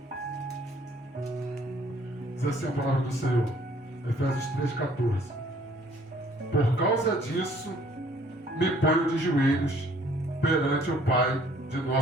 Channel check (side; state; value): both; normal; correlation 0.59